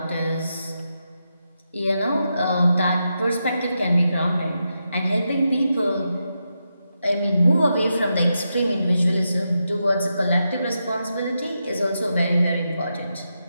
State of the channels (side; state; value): both; inverted; correlation -0.86